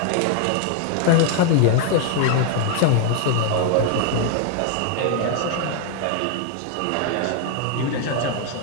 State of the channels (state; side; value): different; both; correlation 0.00